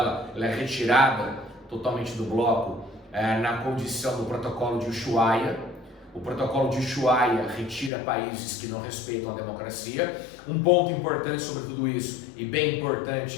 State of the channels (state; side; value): drops out; right; at 7.9 s